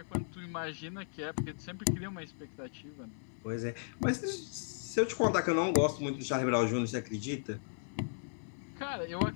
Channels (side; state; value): right; silent; 54 dB below the other